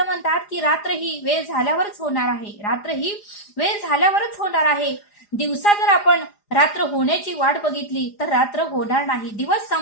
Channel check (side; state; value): right; late; 4.9 ms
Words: की रात्र ही वेळ झाल्यावरच होणार आहे. रात्र ही वेळ झाल्यावरच होणार आहे. दिवसा जर आपण रात्र होण्याची वाट बघितली तर रात्र होणार नाही. दिवस